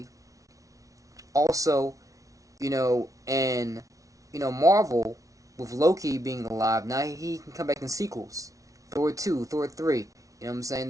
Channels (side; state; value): left; late; 0.17 ms